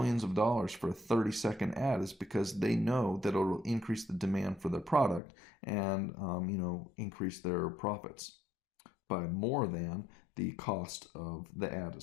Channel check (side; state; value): right; drops out; at 5.2 s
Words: of dollars for a 30-second ad is because they know that it'll increase the demand for their product and, increase their profits by more than the cost of the ad